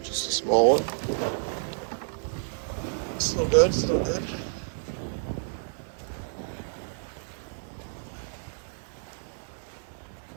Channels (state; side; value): silent; left; 58 dB below the other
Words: Just a small one. Still good, still good.